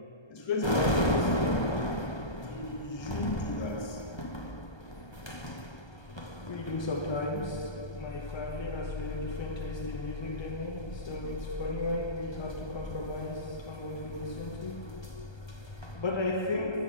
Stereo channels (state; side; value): late; right; 1.3 ms